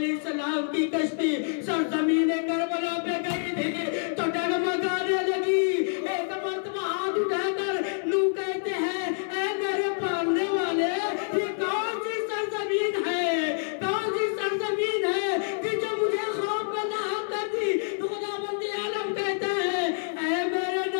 السلام کی کشتی سرزمین کربلا پہ گئی تھی تو ڈگمگانے لگی. ایک مرتبہ ہاتھ اٹھا کر نوح کہتے ہیں, اے میرے پالنے والے, یہ کون سی سرزمین ہے کہ جو مجھے خوف میں لاحق کرتی. خداوند عالم کہتا ہے, اے میرے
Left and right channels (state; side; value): silent; right; 60 dB below the other